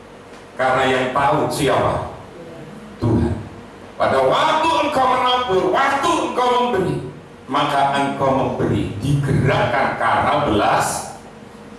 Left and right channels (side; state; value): both; identical; correlation 1.00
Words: karena yang tahu siapa? Tuhan. Pada waktu engkau menabur, waktu engkau memberi, maka engkau memberi, digerakkan karena belas